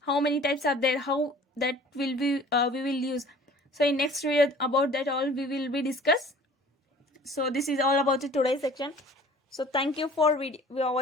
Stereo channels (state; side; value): normal; both; correlation 0.48